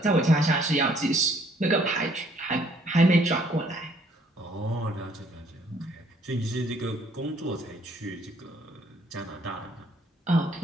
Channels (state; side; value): normal; both; correlation 0.64